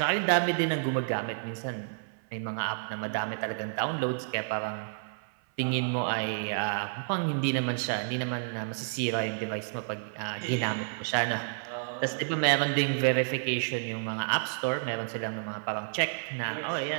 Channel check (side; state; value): left; silent; 58 dB below the other